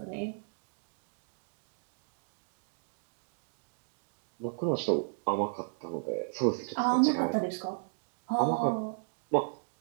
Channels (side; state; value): left; silent; digital silence